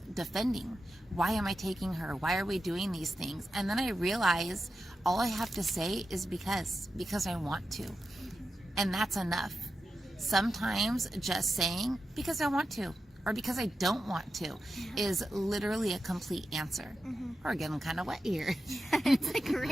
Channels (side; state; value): both; normal; correlation 0.90